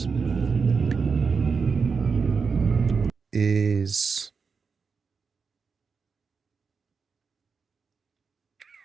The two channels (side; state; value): left; quieter; 5.3 dB